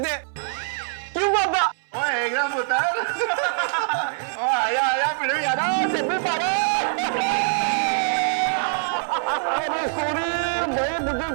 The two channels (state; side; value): silent; left; 63 dB below the other